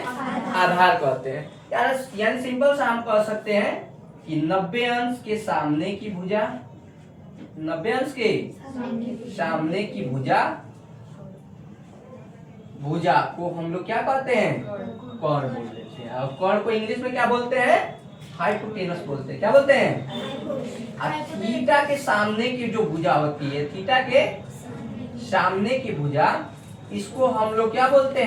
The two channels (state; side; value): identical; both; correlation 1.00